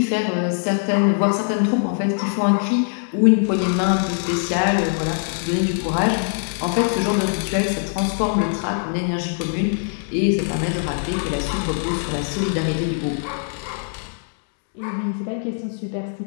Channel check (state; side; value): silent; right; digital silence